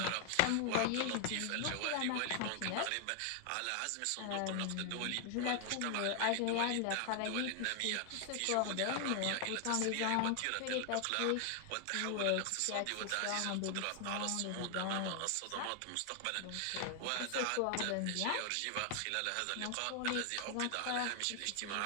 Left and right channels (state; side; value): different; both; correlation 0.00